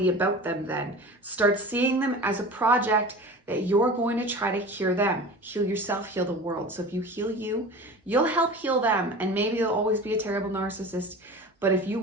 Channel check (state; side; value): normal; both; correlation 0.35